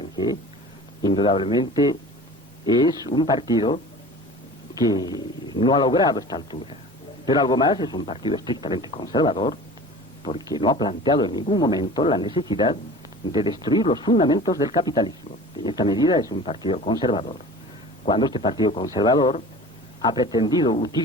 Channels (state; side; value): normal; both; correlation 0.40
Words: indudablemente, es un partido que no ha logrado esta altura. Pero algo más, es un partido estrictamente conservador, porque no ha planteado en ningún momento la necesidad de destruir los fundamentos del capitalismo. En esta medida es un partido conservador. Cuando este partido conservador ha pretendido